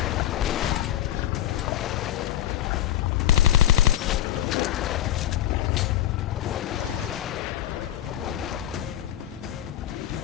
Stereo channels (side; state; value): right; quieter; 12.2 dB